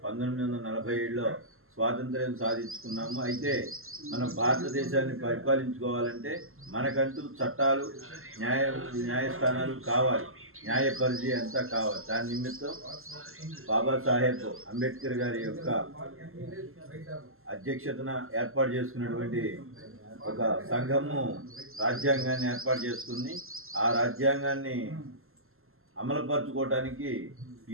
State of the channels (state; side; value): late; left; 0.62 ms